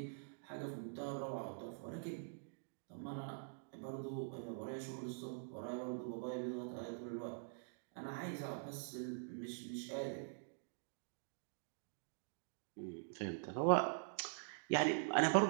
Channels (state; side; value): silent; left; digital silence